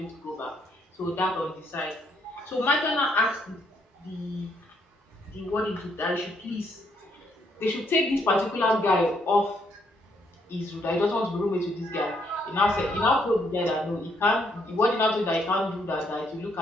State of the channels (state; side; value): normal; both; correlation 0.72